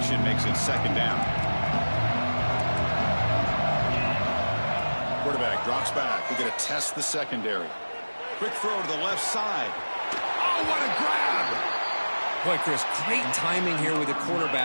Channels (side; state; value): both; inverted; correlation -1.00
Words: makes it second down. Quarterback drops back. We're going to test the secondary. Quick throw to the left side. Oh, what a grab! Boy, Chris, great timing here with the